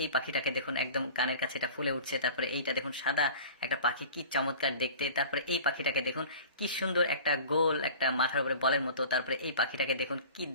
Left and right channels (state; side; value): inverted; both; correlation -0.41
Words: এই পাখিটাকে দেখুন, একদম কানের কাছে এটা ফুলে উঠছে। তারপরে এইটা দেখুন, সাদা একটা পাখি, কি চমৎকার দেখতে। তারপরে এই পাখিটাকে দেখুন, কি সুন্দর একটা গোল, একটা মাথার উপরে বলের মতো। তারপরে এই পাখিটাকে দেখুন, কি